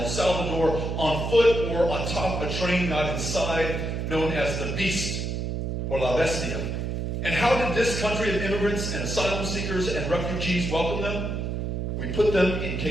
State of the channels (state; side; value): noise; right; hum, 2 dB below the sound